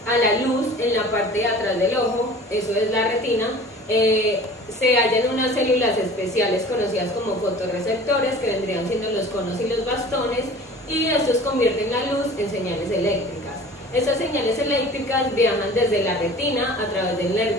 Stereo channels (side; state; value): both; normal; correlation 0.43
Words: a la luz en la parte de atrás del ojo, eso es la retina, se hallan unas células especiales conocidas como fotorreceptores, que vendrían siendo los conos y los bastones, y estos convierten la luz en señales eléctricas. Estas señales eléctricas viajan desde la retina a través del